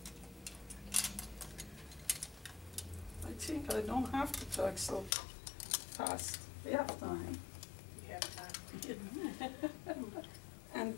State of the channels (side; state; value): right; drops out; at 5.2 s